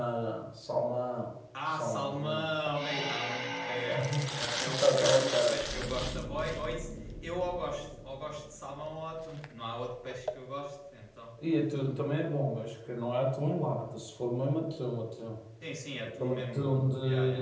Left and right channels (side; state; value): both; identical; correlation 1.00